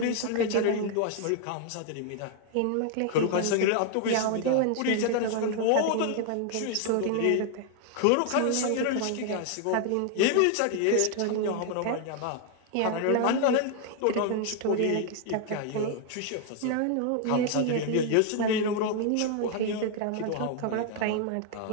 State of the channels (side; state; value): both; different; correlation 0.00